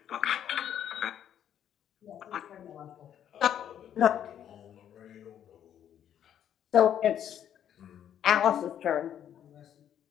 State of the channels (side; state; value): right; quieter; 9.9 dB